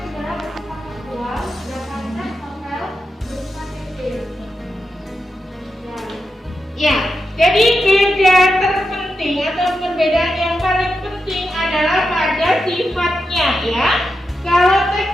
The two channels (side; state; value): both; normal; correlation 0.87